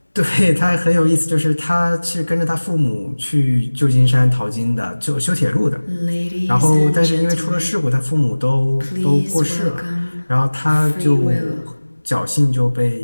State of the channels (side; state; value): both; inverted; correlation -1.00